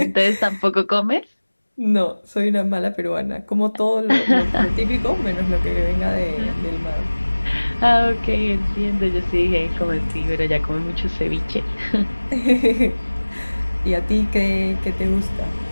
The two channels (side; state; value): both; inverted; correlation -1.00